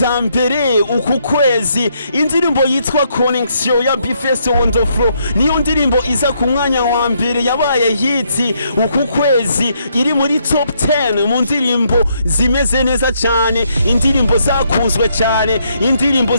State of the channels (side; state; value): both; inverted; correlation -0.74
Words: mbere uku kwezi. Indirimbo yitwa Connection ya B-Fest on the Floor niyo ndirimbo iza ku mwanya wa mbere yabaye hit uku kwezi, iri muri top 10 mu ndirimbo zimeze neza cyane, indirimbo zakuzwe cyane, indirimbo